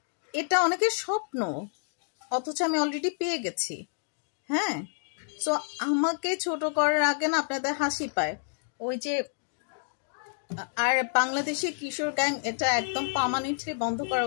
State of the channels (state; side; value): silent; right; digital silence